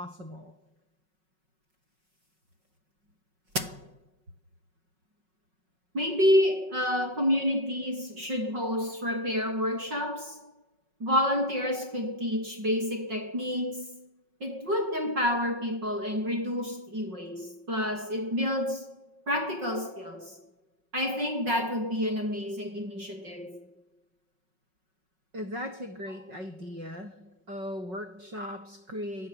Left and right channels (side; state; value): left; late; 5.4 ms